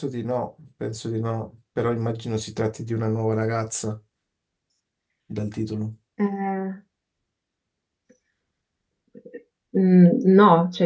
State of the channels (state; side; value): identical; both; correlation 1.00